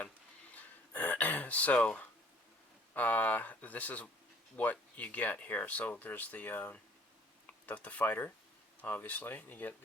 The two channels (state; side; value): normal; both; correlation 0.56